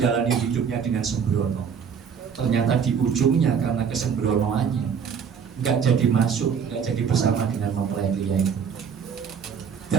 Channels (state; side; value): quieter; left; 6.9 dB